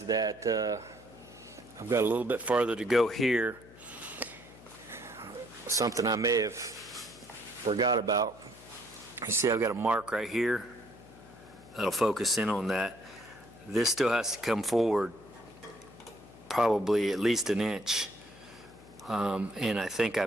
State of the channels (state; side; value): noise; left; hum, 21 dB below the sound